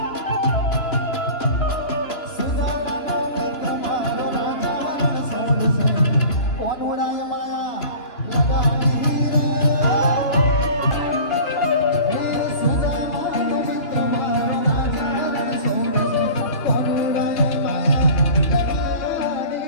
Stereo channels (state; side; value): late; right; 2.9 ms